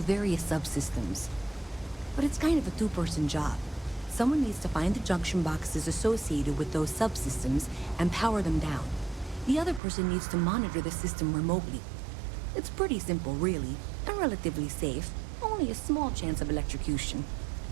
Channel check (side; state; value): left; drops out; at 9.8 s